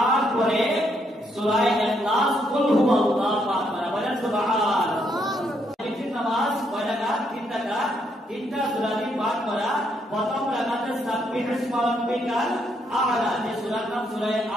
পরে সূরা ইখলাস কুল হুয়াল্লাহু পাঠ করা। বলেন সুবহানাল্লাহ। এই নামাজ কয় রাকাত? 3 রাকাত, 3টা সূরা পাঠ করা। প্রথম রাকাতে সাব্বিহ ইসমা রাব্বিকাল আ'লা, যে সূরার নাম সূরা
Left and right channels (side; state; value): both; normal; correlation 0.74